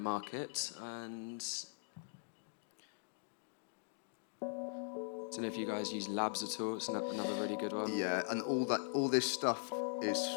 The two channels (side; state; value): right; silent; digital silence